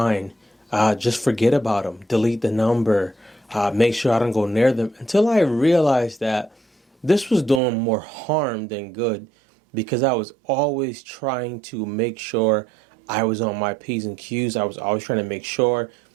Just forget about them. Delete the number. Make sure I don't go near them. Until I realized that this was doing more harm than good, because I was always trying to make sure I was on my P's and Q's. I was always trying to make sure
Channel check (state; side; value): drops out; left; at 7.6 s